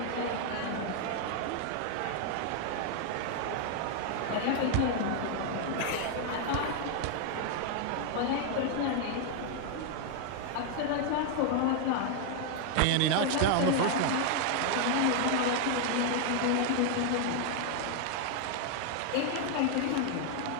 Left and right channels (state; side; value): different; both; correlation 0.00